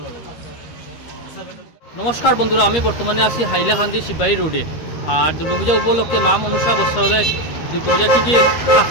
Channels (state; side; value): late; right; 13 ms